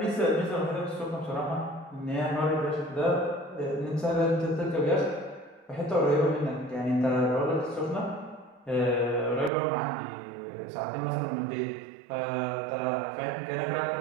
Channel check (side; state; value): left; drops out; at 9.5 s